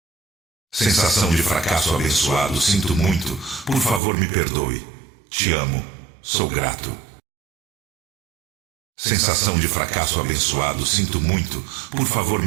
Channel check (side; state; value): left; drops out; at 4.0 s